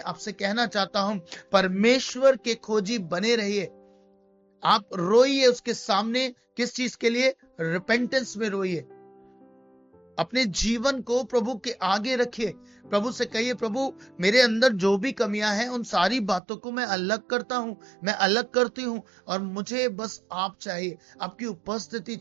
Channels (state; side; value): drops out; left; at 16.4 s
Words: आपसे कहना चाहता हूं, परमेश्वर के खोजी बने रहिए। आप रोइए उसके सामने। किस चीज के लिए? रिपेंटेंस में रोइए। अपने जीवन को प्रभु के आगे रखिए। प्रभु से कहिए, प्रभु मेरे अंदर जो भी कमियां हैं उन सारी बातों को मैं अलग करता हूं, मैं अलग करती हूं और मुझे बस आप चाहिए, आपकी उपस्थिति